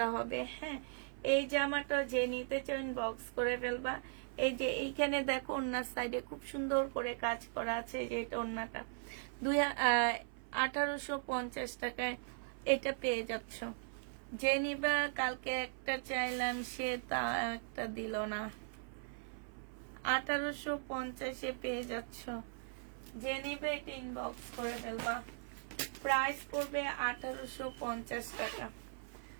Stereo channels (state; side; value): silent; left; 52 dB below the other